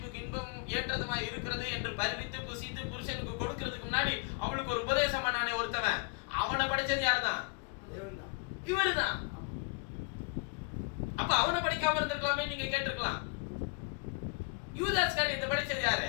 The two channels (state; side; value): quieter; right; 30.0 dB